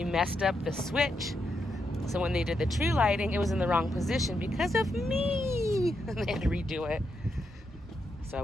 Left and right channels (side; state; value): both; normal; correlation 0.82